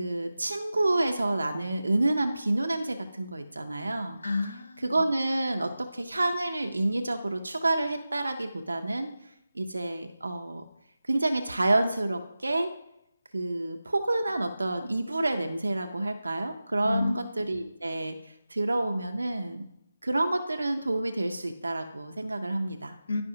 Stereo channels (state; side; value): inverted; both; correlation -0.94